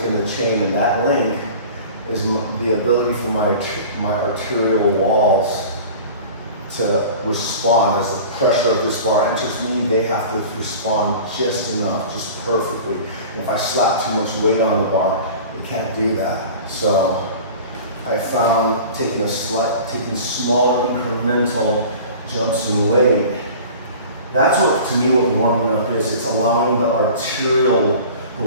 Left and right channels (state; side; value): inverted; both; correlation -0.40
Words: in the chain, and that link is the ability for my arterial walls to respond. As the pressure of this bar enters me, they have to respond just enough, just perfectly. And if I slap too much weight on the bar, they can't do that. So I found taking smaller incremental jumps in weight, that's what, to me, what warming up is. It's allowing the